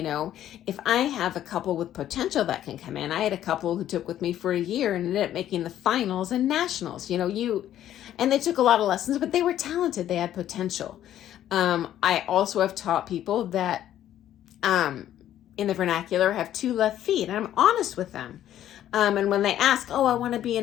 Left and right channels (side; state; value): right; quieter; 11.8 dB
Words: I have a couple with potential that can come in, I had a couple who took with me for a year and ended up making the finals and nationals, and they took a lot of lessons, but they were talented. They had potential. I also have taught people that, in the vernacular, have 2 left feet, and I'm honest with them. And when they ask, I want to be a